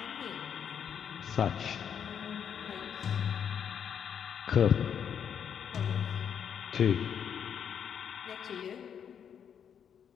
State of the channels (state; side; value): quieter; right; 8.1 dB